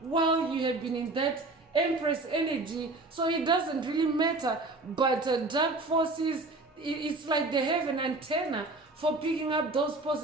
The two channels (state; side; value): quieter; left; 3.1 dB